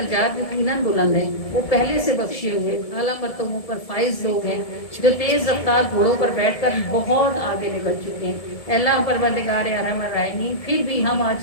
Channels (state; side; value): late; right; 1.7 ms